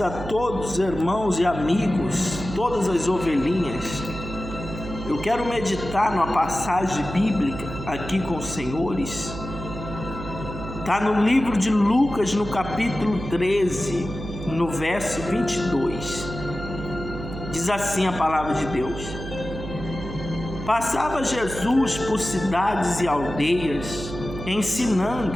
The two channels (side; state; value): right; noise; hum, 9 dB below the sound